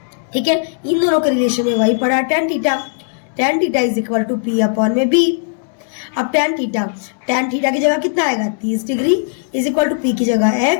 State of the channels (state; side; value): silent; right; digital silence